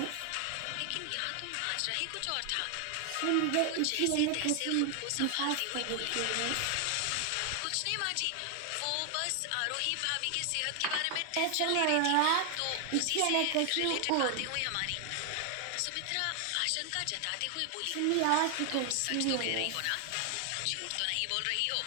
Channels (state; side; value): different; both; correlation 0.00